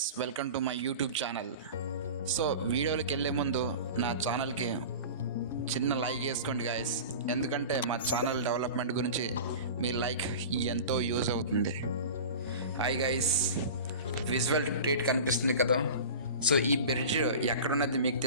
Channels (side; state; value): both; inverted; correlation -0.34